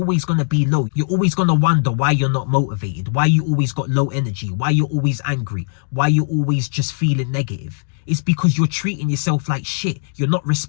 going to be low. You're always going to wonder why you're not motivated, why you always got low energy, why you're always angry, why you're always just feeling negative. It's because you're treating yourself like shit. You're not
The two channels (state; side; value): silent; right; digital silence